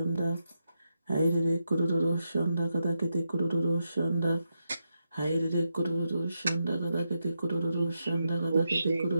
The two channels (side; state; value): both; inverted; correlation -0.85